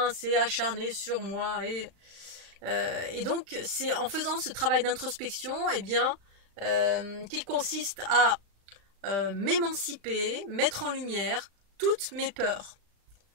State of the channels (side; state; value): left; late; 35 ms